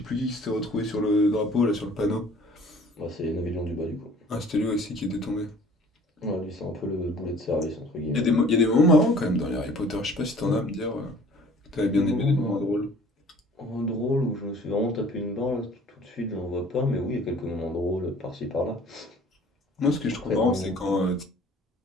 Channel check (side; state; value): both; normal; correlation 0.51